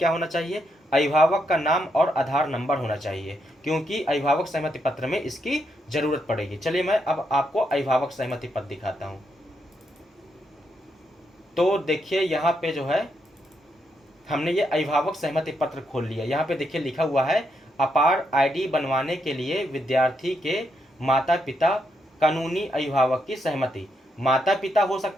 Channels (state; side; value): normal; both; correlation 0.79